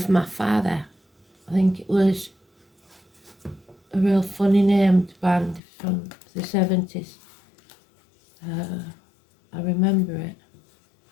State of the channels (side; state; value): right; drops out; at 5.6 s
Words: my father. I think it was a real funny named band from the 70s. I remember it.